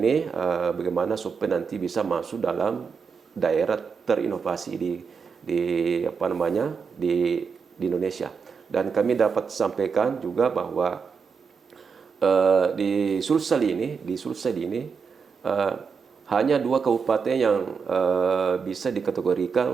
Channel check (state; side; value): quieter; left; 5.7 dB